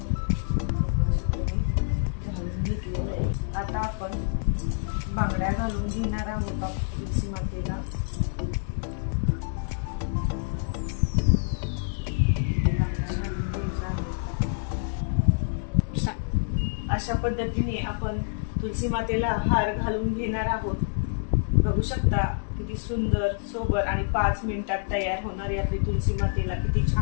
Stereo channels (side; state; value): right; silent; digital silence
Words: घालून घेतलेलं आहे। आता आपण बांगड्या घालून घेणार आहोत तुलसी मातेला। अशा पद्धतीने आपण तुलसी मातेला हार घालून घेणार आहोत। बघू शकता किती सुंदर सोबर आणि 5 मिनिटात तयार होणारी आपली तुलसी मातेला किती